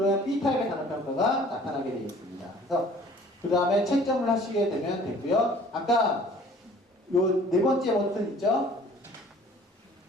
B타입의 단어평가가 나타나게 되어 있습니다. 그래서 그 다음에 채점을 하시게 되면 되고요. 아까 요 네 번째 버튼 있죠?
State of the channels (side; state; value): both; normal; correlation 0.51